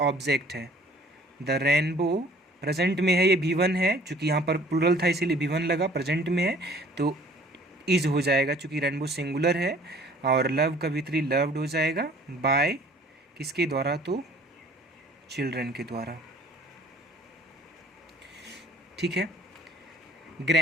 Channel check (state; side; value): normal; both; correlation 0.54